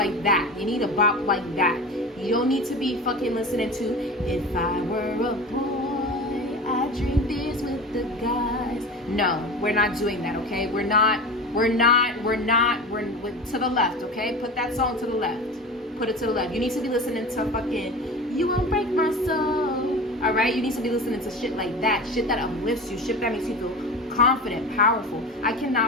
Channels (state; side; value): normal; both; correlation 0.31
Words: that. You need a bop like that. You don't need to be fucking listening to, if I were a boy, I'd drink this with the guys. No, we're not doing that, okay? We're to the left, okay? Put that song to the left. Put it to the left. You need to be listening to fucking, you won't break my soul. All right? You need to be listening to shit like that. Shit that uplifts you. Shit that makes you feel confident, powerful. I